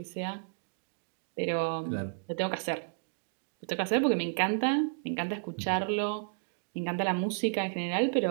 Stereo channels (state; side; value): silent; left; digital silence